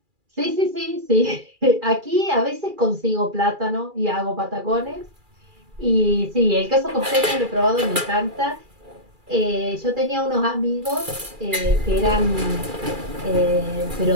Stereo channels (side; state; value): left; late; 2.4 ms